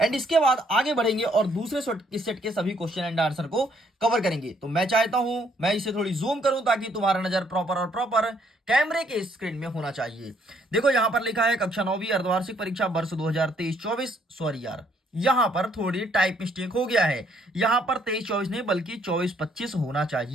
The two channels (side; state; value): both; normal; correlation 0.67